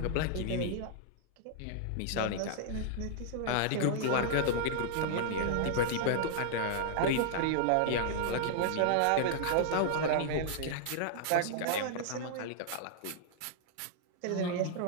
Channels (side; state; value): both; different; correlation -0.01